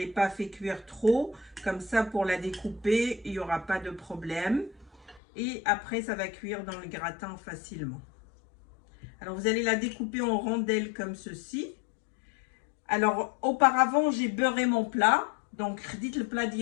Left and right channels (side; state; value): right; drops out; at 5.2 s